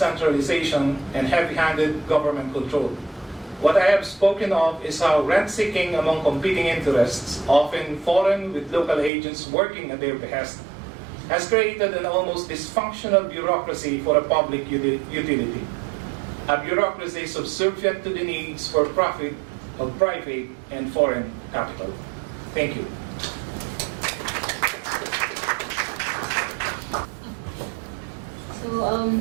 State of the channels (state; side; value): drops out; left; at 9.1 s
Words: and heavy-handed government control. What I have spoken of is how rent-seeking among competing interests, often foreign with local agents working at their behest, has created an almost dysfunctional bureaucracy for a public utility. A bureaucracy subservient to the needs for profit of private and foreign capital. Thank you. So,